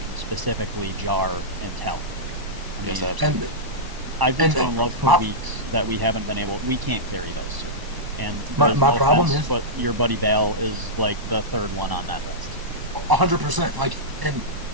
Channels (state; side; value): late; left; 1.0 ms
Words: specifically Jar and Tell. I Yes, mean, absolutely. I've been and- so in love for weeks that we haven't been able. We can't carry those two. And My there's no problem offense, is- but your buddy Bale is like the third one on that list. 100%. Like, and